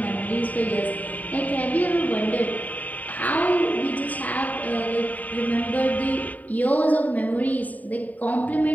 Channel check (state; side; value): late; right; 0.075 ms